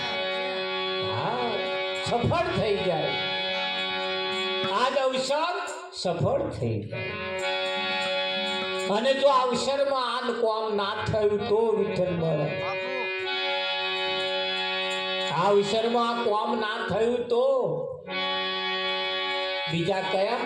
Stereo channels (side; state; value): both; identical; correlation 1.00